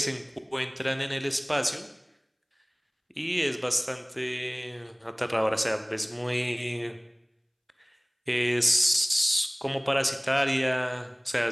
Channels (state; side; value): identical; both; correlation 1.00